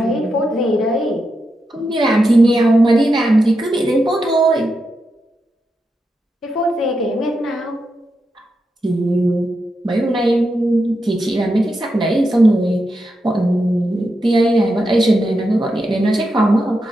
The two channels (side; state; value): both; normal; correlation 0.86